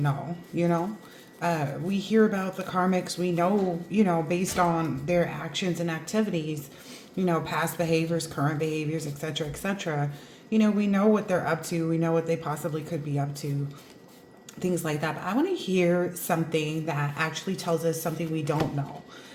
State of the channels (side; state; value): both; identical; correlation 1.00